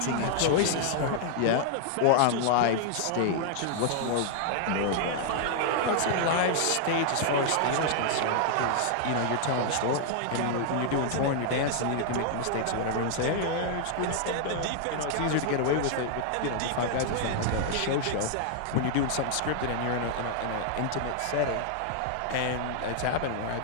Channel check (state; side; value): different; both; correlation 0.00